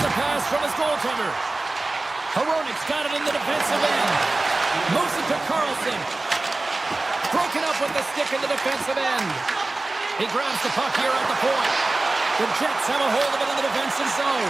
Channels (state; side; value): quieter; left; 3.1 dB